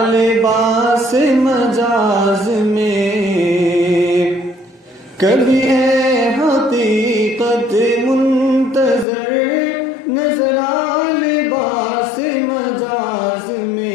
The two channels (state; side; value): drops out; right; at 9.1 s